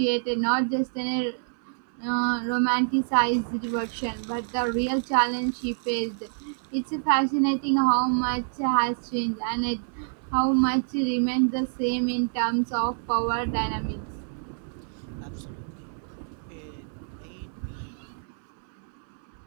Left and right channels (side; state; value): left; silent; 60 dB below the other